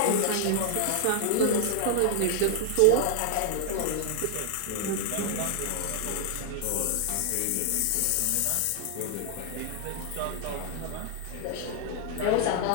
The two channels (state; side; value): different; both; correlation 0.00